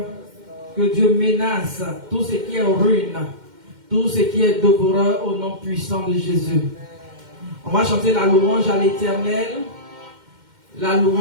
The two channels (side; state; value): left; late; 2.1 ms